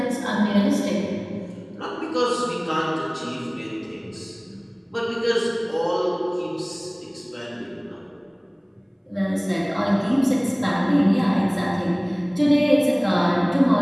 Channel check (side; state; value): both; identical; correlation 1.00